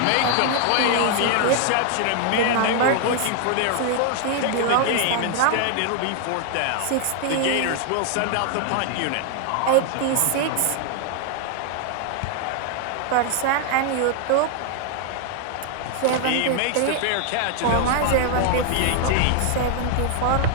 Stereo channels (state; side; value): different; both; correlation 0.00